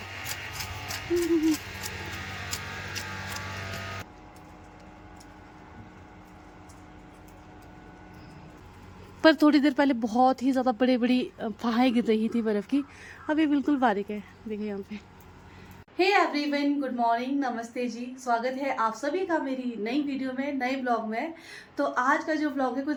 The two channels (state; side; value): identical; both; correlation 1.00